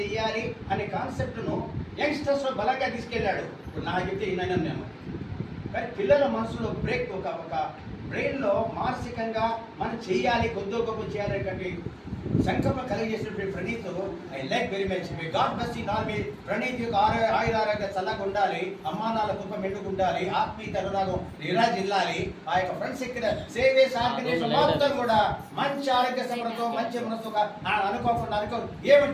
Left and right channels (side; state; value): both; identical; correlation 1.00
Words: అనే కాన్సెప్ట్ను యంగ్స్టర్స్లో బలంగా తీసుకెళ్ళాడు. ఇప్పుడు నాకు చెప్తే ఈయన నేను కానీ పిల్లల మనసులో బ్రేక్ ఒక బ్రెయిన్లో మానసికంగా మనం చేయాలి కొద్దో గొప్ప చేయాలి సంకల్పం కలిగజేసినటువంటి Praneeth I like very much. మీ గాడ్ బ్లెస్ యు ఆల్. మీ ప్రణీత్ యొక్క ఆయురారోగ్య చల్లగా ఉండాలి, అమ్మానాల కృప మెండుకుండాలి, ఆత్మీయత అనురాగం నిరాజిల్లాలి. ఆ యొక్క ఫ్రెండ్స్ ఎక్కిన సేవేస్ ఆర్గనైజేషన్ మొత్తం కూడా మంచి ఆరోగ్య సమృద్ధి మంచి మనసుగా అనుకోకుండా